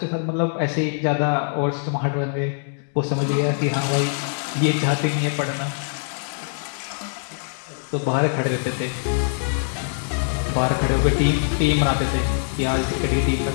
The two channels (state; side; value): silent; right; digital silence